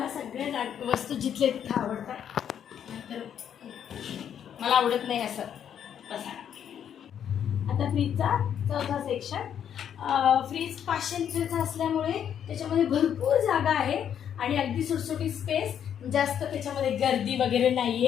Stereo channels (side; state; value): right; quieter; 9.0 dB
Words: सगळ्या वस्तू जिथल्या तिथं आवडतात, तर मला आवडत नाही असं बसा. आता फ्रीजचा चौथा सेक्शन. फ्रीज 500 लिटरचा असल्यामुळे त्याच्यामध्ये भरपूर जागा आहे आणि अगदी सुटसुटीत स्पेस, जास्त त्याच्यामध्ये गर्दी वगैरे नाही